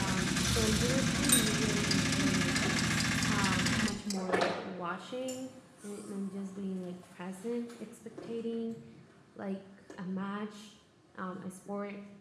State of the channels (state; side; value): identical; both; correlation 1.00